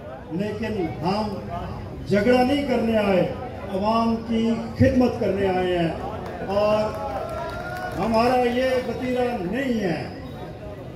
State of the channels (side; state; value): both; identical; correlation 1.00